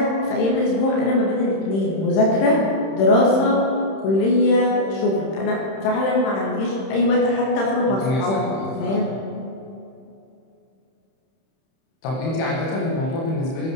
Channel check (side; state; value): right; late; 31 ms